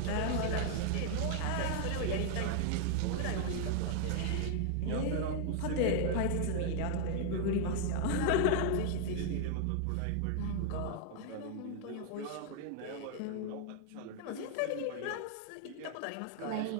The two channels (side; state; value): both; different; correlation 0.00